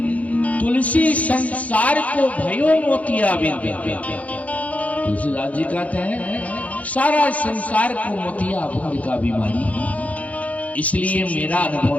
तुलसी संसार को भयो मोतिया बिंद। तुलसीदास जी कहते हैं सारा संसार को मोतिया बिंद का बीमारी, इसलिए मेरा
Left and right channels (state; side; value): late; right; 0.068 ms